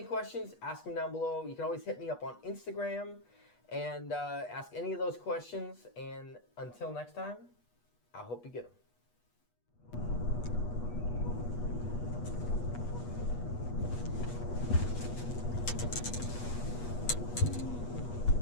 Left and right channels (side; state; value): right; late; 8.3 ms